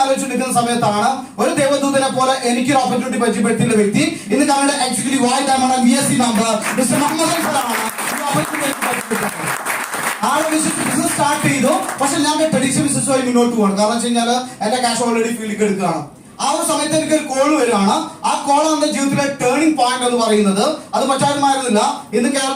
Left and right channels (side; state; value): both; identical; correlation 1.00